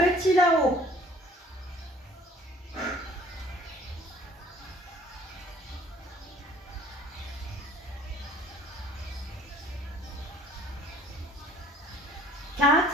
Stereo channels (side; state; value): both; normal; correlation 0.55